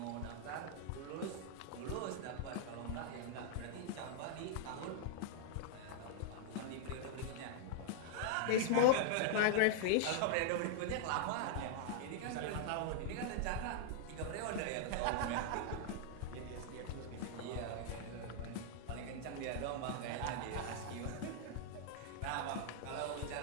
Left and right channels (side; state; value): both; different; correlation -0.01